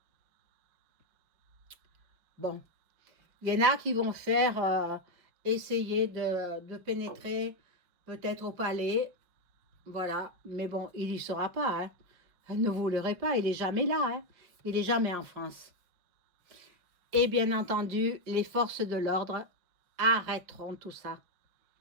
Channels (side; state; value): left; late; 5.7 ms